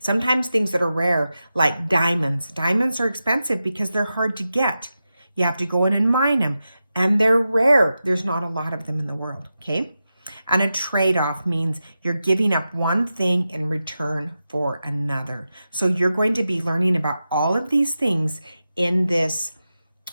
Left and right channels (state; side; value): inverted; both; correlation -0.91